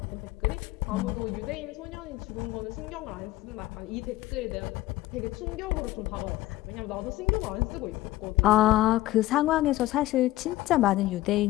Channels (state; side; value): quieter; right; 16.7 dB